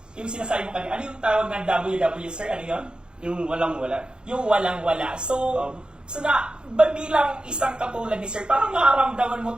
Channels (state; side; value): late; left; 0.050 ms